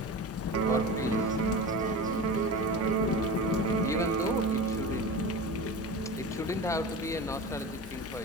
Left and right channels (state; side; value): normal; both; correlation 0.30